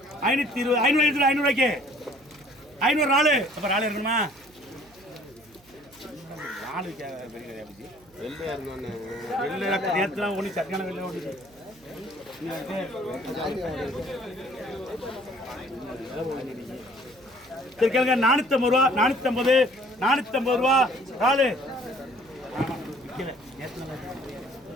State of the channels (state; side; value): noise; right; hum, 29 dB below the sound